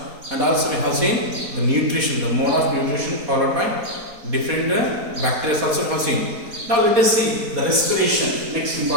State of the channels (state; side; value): late; left; 4.2 ms